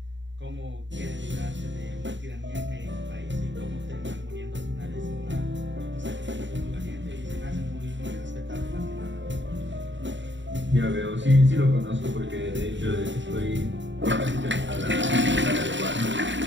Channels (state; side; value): late; left; 0.54 ms